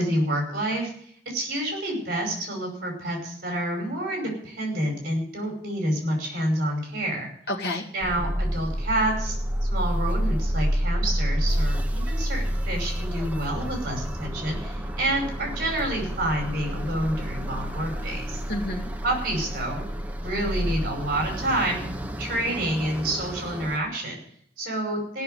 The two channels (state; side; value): normal; both; correlation 0.58